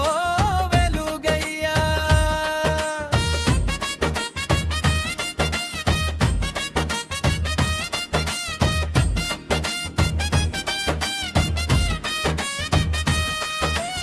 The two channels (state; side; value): identical; both; correlation 1.00